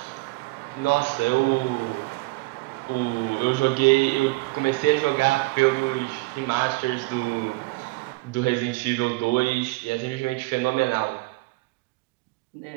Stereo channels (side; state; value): left; quieter; 23.7 dB